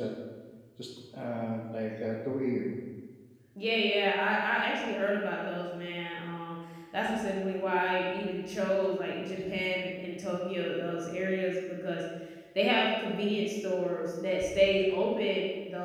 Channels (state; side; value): identical; both; correlation 1.00